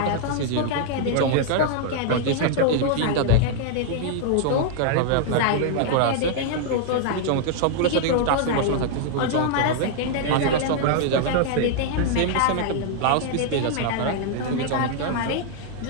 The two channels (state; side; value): different; both; correlation -0.01